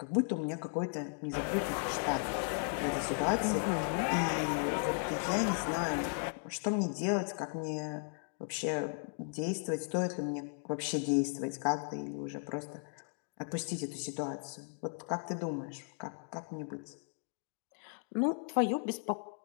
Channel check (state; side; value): silent; right; 54 dB below the other